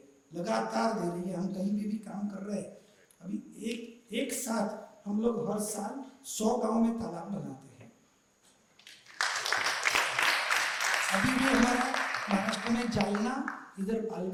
लगातार दे रही है। हम कहीं भी काम कर रहे हैं, अभी एक साथ हम लोग हर साल 100 गांव में तालाब बनाते हैं। अभी भी हमारा महाराष्ट्र में जालना, इधर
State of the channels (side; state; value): both; identical; correlation 1.00